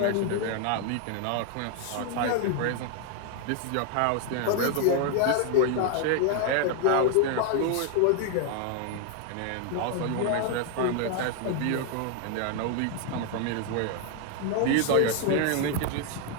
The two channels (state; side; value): different; both; correlation 0.00